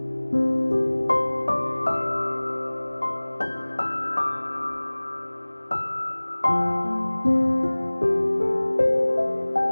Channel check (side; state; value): both; inverted; correlation -1.00